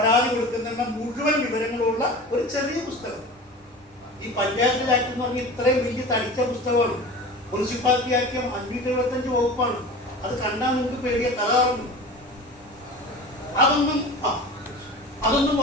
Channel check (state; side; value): normal; both; correlation 0.35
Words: കൊടുക്കുന്ന മുഴുവൻ വിവരങ്ങളുള്ള ഒരു ചെറിയ പുസ്തകം. ഈ പഞ്ചായത്ത് ആക്ട് എന്ന് പറഞ്ഞാൽ ഇത്രയും വലിയ തടിച്ച പുസ്തകമാണ്. മുനിസിപ്പാലിറ്റി ആക്ട് 575 വകുപ്പാണ്. അത് കണ്ടാൽ നിങ്ങൾക്ക് പേടിയ തകർന്നു. അതൊന്നും